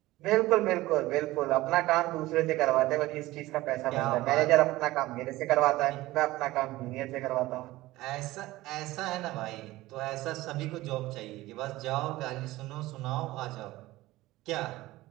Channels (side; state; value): left; quieter; 17.9 dB